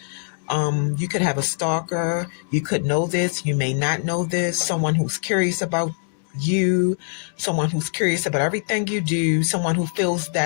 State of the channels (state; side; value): silent; right; digital silence